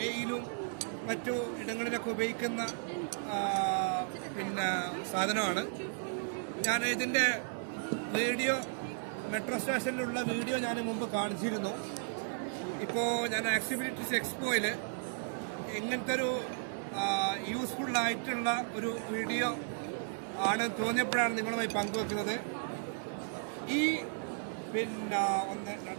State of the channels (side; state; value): left; silent; digital silence